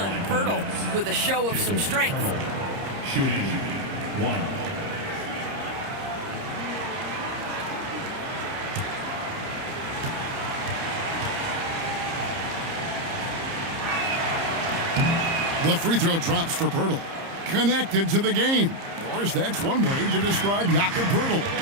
Pirtle with a show of some strength. Shooting 1. The free throw drops for Pirtle. Connected to the game. Of course, that's one way to describe Jakob Pirtle.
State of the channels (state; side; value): late; left; 30 ms